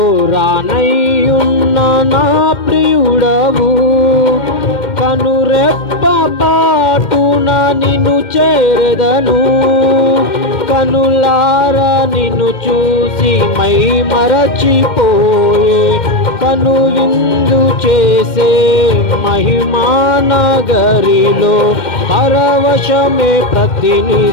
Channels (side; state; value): right; late; 2.1 ms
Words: రానయ్యున్న నా ప్రియుడవు, కనురెప్ప పాటున నిన్ను చేరదను. కనులారా నిన్ను చూసి మై మరచిపోయే, కను విందు చేసే మహిమానగరిలో పరవశమే